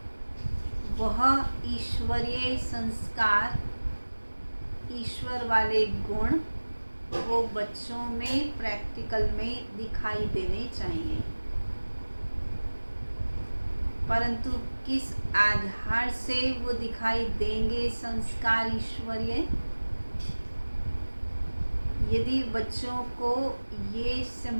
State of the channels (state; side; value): inverted; both; correlation -1.00